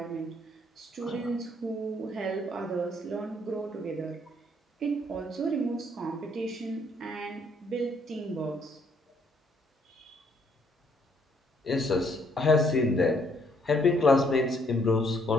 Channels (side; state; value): both; normal; correlation 0.68